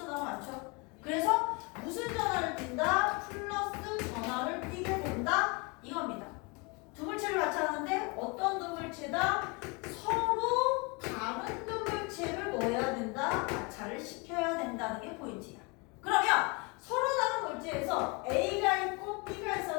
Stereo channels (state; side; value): quieter; right; 29.8 dB